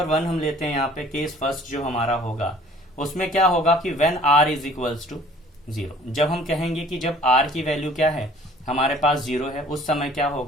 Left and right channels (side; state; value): both; normal; correlation 0.53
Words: 1 हम लेते हैं यहाँ पे। केस फर्स्ट जो हमारा होगा उसमें क्या होगा कि when r is equals to 0। जब हम कहेंगे कि जब r की वैल्यू क्या है, हमारे पास 0 है, उस समय क्या